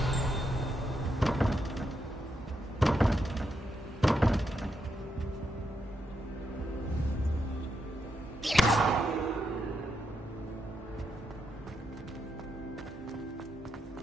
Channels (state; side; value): normal; both; correlation 0.82